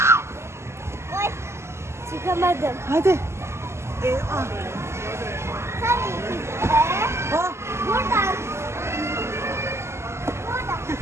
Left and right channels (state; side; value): late; left; 0.13 ms